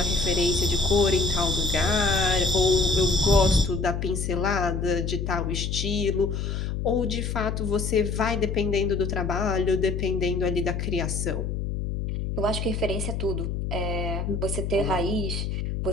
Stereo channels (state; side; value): noise; left; hum, 3 dB below the sound